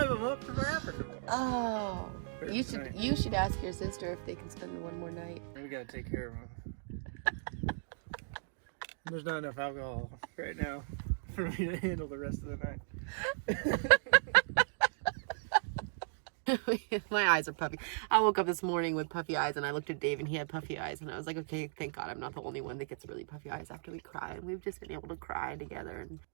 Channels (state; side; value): silent; left; digital silence